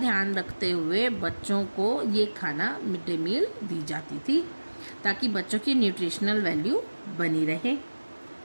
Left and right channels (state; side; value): inverted; both; correlation -1.00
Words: रखते हुए बच्चों को ये खाना मिड डे मील दी जाती थी ताकि बच्चों की न्यूट्रिशनल वैल्यू बनी रहे।